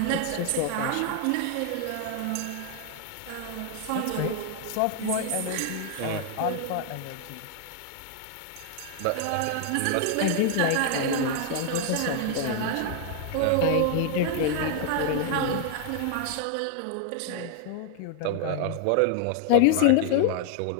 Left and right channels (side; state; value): both; different; correlation 0.00